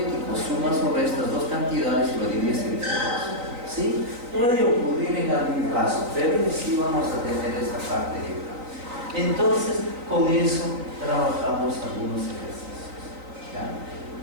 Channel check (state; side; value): late; left; 3.9 ms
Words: Sumas sobre estas dos cantidades y lo divides entre 2. ¿Sí? Puede ocurrir en algún caso, pero sí vamos a tener esta parte de acá. Entonces, con eso trabajamos algunos ejercicios, ¿ya?